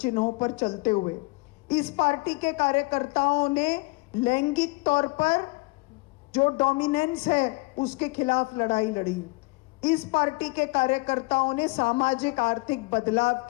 चिन्हों पर चलते हुए। इस पार्टी के कार्यकर्ताओं ने लैंगिक तौर पर जो डोमिनेंस है उसके खिलाफ लड़ाई लड़ी। इस पार्टी के कार्यकर्ताओं ने सामाजिक आर्थिक बदलाव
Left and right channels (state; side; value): quieter; right; 25.8 dB